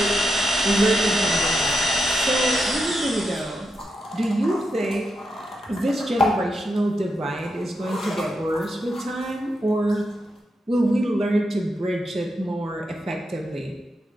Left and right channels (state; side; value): normal; both; correlation 0.85